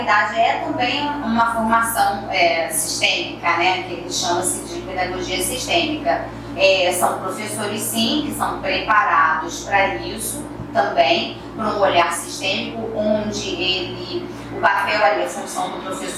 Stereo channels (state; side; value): identical; both; correlation 1.00